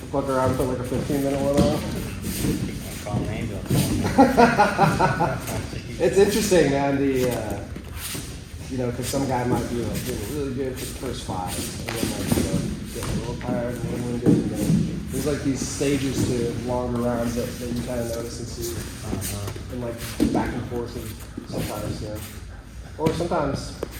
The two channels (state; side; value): identical; both; correlation 1.00